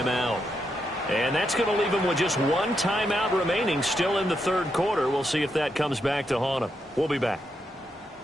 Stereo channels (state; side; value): normal; both; correlation 0.82